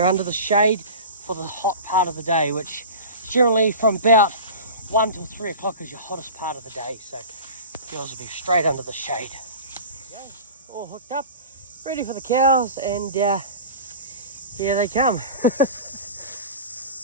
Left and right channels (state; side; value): inverted; both; correlation -0.35